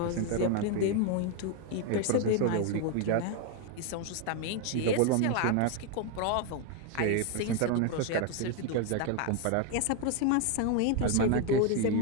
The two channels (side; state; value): both; different; correlation 0.01